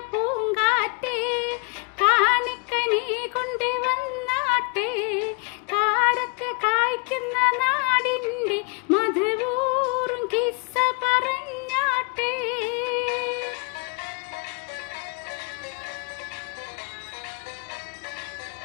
പൂങ്കാറ്റേ, കാണിക്ക നീ കൊണ്ട് വന്നാട്ടെ, കാരക്ക കായ്ക്കുന്ന നാടിൻ്റെ മധുവൂറും കിസ്സ പറഞ്ഞാട്ടെ.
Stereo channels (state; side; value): quieter; right; 32.9 dB